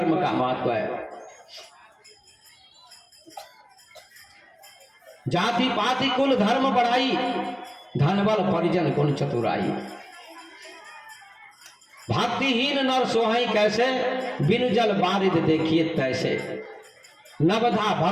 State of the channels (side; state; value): both; identical; correlation 1.00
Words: का महत्व है। जाति पाति कुल धर्म बढ़ाई, धनबल परिजन गुण चतुराई। भक्तिहीन नर सोहई कैसे, बिनु जल बारिद देखिए तैसे। नवधा